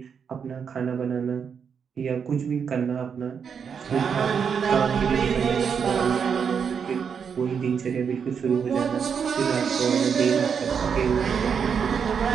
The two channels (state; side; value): quieter; left; 6.8 dB